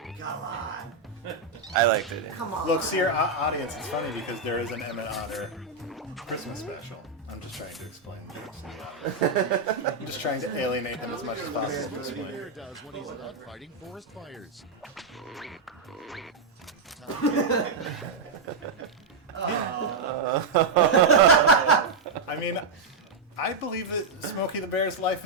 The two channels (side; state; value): left; quieter; 4.1 dB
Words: come on. I liked it. Come on. Look, see our audience. It's funny because there is an Emmett Otter Christmas special. I'm just trying to explain things. I'm just trying to alienate them as much as possible. to Smokey the explain. Bear does when he's not fighting forest fires. I mean, I believe that Smokey the Bear's life